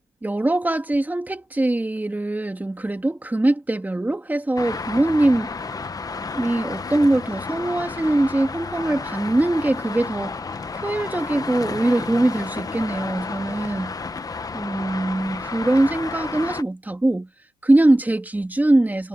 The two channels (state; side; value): normal; both; correlation 0.93